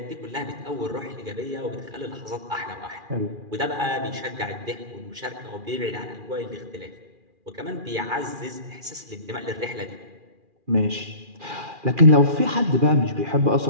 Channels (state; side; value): late; left; 2.4 ms